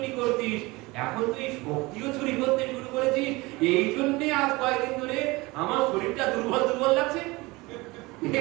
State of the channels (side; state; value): left; quieter; 22.7 dB